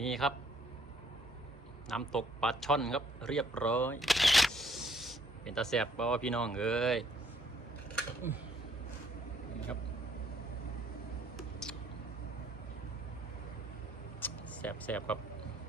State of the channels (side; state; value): both; normal; correlation 0.65